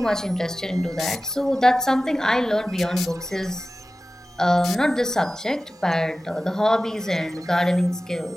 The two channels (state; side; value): normal; both; correlation 0.96